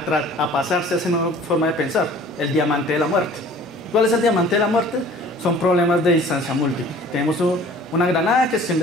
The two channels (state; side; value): normal; both; correlation 0.48